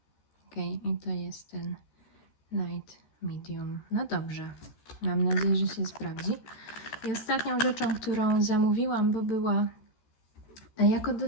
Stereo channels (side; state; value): right; late; 14 ms